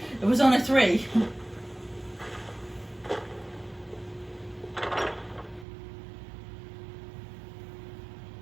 It was only 3.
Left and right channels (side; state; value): left; drops out; at 5.7 s